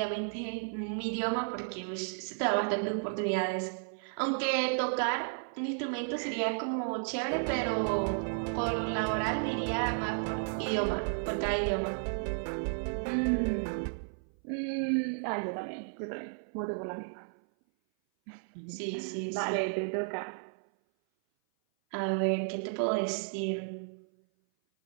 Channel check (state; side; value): silent; left; 56 dB below the other